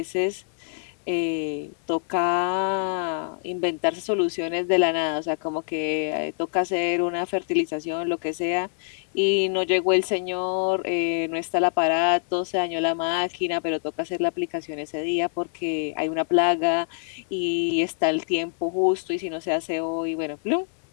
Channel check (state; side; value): silent; right; 60 dB below the other